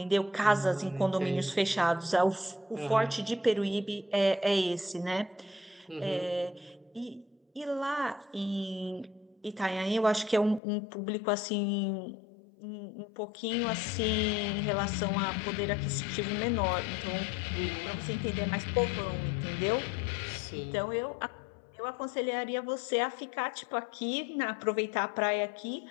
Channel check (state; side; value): drops out; right; at 10.6 s